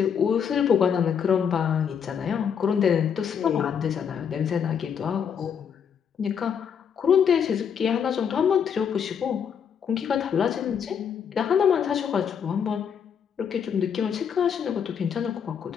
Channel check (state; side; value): quieter; right; 7.5 dB